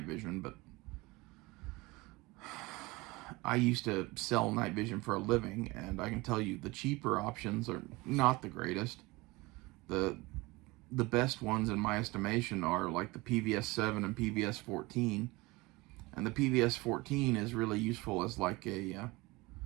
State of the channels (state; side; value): quieter; left; 22.8 dB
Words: vision, but I used to sell night vision for a living, and I can tell you the cheaper options are not the greatest. The best ones in my estimation are like the PVS-7 and PVS-14, and the PVS-14 is really useful as like a